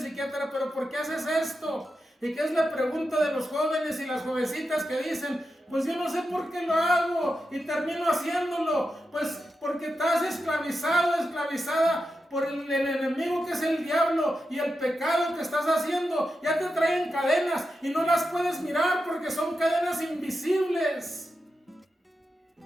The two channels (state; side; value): normal; both; correlation 0.89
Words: psiquiatra, ¿pero por qué haces esto? ¿Y qué es la pregunta de los jóvenes y las jovencitas que dicen? Pues yo no sé por qué lo hago y termino haciéndolo. Pues porque estás esclavizado, esclavizada por el enemigo que es el diablo, y el pecado que estás haciendo ya te traen cadenas y no las puedes mirar porque son cadenas invisibles.